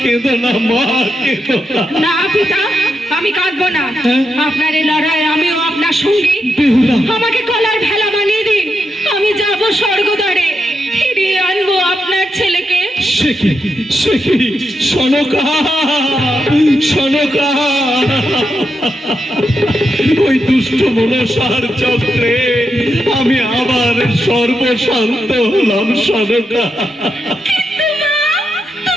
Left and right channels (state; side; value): normal; both; correlation 0.85